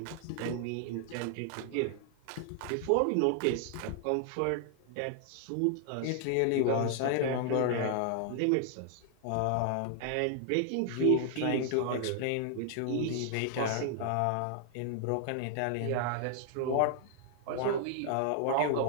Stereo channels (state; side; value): different; both; correlation 0.00